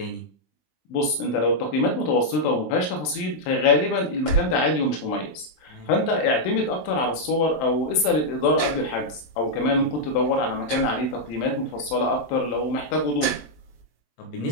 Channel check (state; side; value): late; right; 20 ms